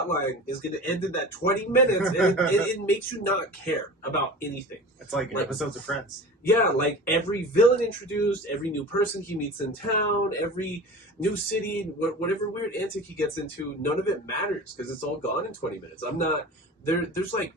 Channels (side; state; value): both; normal; correlation 0.35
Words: line is going to end in that 20 minutes, and it makes you not care about anything. It's like episodes of Friends. Yeah, like every villain introduced, every new person he meets in town, every new city, whatever weird antic he gets into, none of it matters because it's all gone in 20 minutes. I'm not there's like